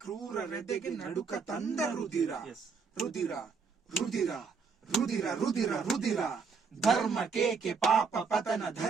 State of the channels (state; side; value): quieter; left; 5.3 dB